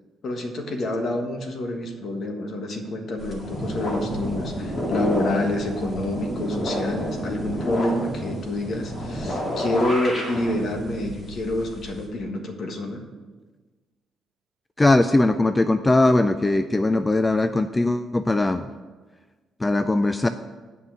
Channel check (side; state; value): both; normal; correlation 0.87